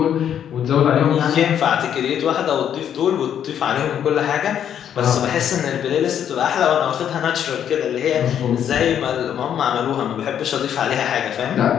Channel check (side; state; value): right; quieter; 9.4 dB